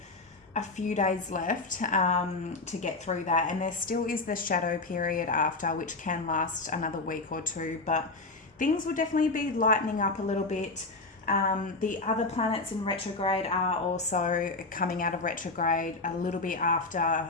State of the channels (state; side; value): quieter; right; 3.3 dB